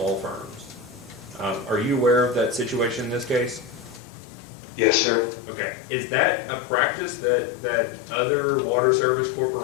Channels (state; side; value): drops out; right; at 4.0 s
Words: firms. Are you aware of that situation in this case? Yes, sir. Okay. Is that a practice that other Water Service